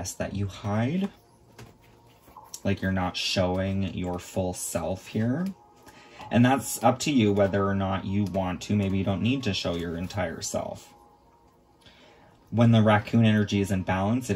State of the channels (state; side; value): identical; both; correlation 1.00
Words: that you hide. Like you're not showing your full self here. And that's up to you whether or not you want to. Maybe you don't need to show your entire self. When the raccoon energy is in balance, it